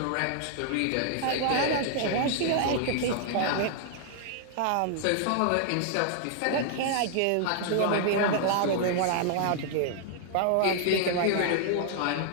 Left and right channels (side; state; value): both; different; correlation -0.01